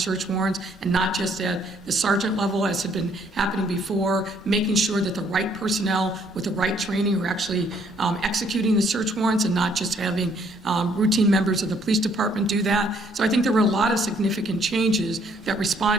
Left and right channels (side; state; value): both; normal; correlation 0.65